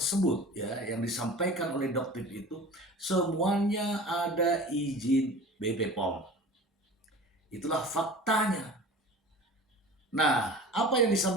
ya yang disampaikan oleh dokter itu semuanya ada izin BP POM. Itulah faktanya. Nah, apa yang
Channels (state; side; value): normal; both; correlation 0.39